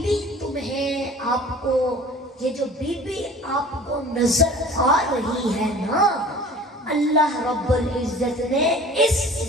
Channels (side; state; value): both; normal; correlation 0.44